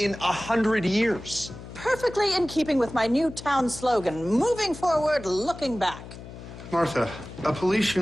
100 years. Perfectly in keeping with my new town slogan, moving forward, looking back. Martha, a police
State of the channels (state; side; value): noise; left; hum, 14 dB below the sound